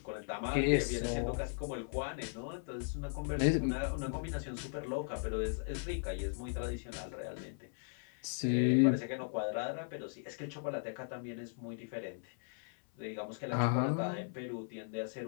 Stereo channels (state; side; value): silent; right; 53 dB below the other